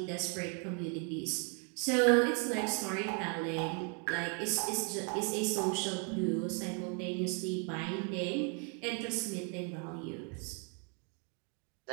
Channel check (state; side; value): quieter; left; 38.4 dB